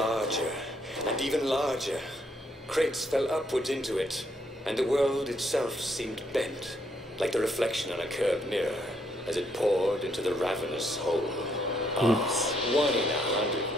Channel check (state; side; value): normal; both; correlation 0.73